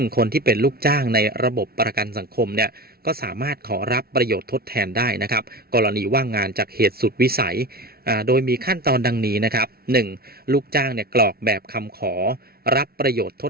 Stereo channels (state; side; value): late; left; 0.44 ms